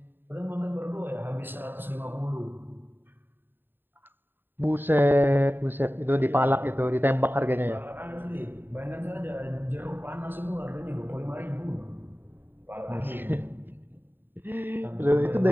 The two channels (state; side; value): late; left; 0.095 ms